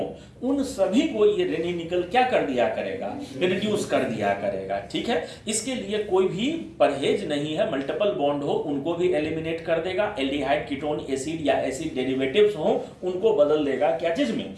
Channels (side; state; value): both; identical; correlation 1.00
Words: उन सभी को ये रेनी-निकल क्या कर दिया करेगा, रिड्यूस कर दिया करेगा, ठीक है। इसके लिए कोई भी परहेज नहीं है, मल्टीपल बॉन्ड हो उनको भी एलिमिनेट कर देगा, एल्डिहाइड कीटोन एसिड या एसिड डेरिवेटिव्स हो उनको बदल देगा क्या चीज में,